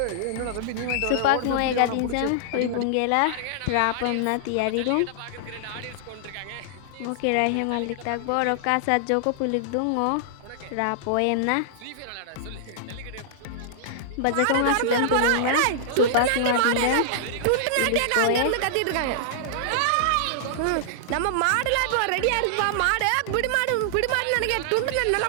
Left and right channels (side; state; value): both; different; correlation -0.01